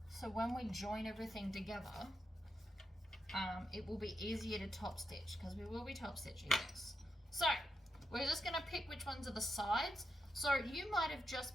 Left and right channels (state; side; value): normal; both; correlation 0.84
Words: so when we join everything together, it will be easier to top stitch because we will be top stitching this. So we're just going to pick which ones are the sides. So you might have